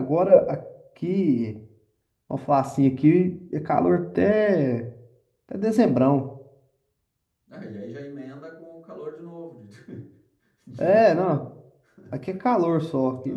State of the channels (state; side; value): identical; both; correlation 1.00